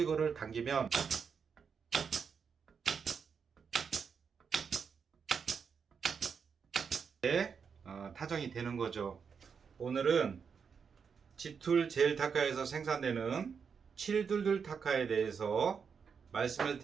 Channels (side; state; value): left; quieter; 6.2 dB